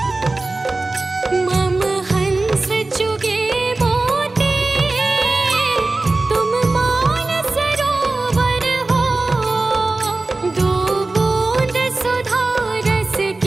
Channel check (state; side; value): quieter; left; 3.3 dB